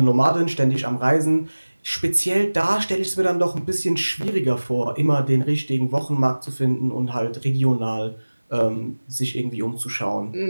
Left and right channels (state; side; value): inverted; both; correlation -1.00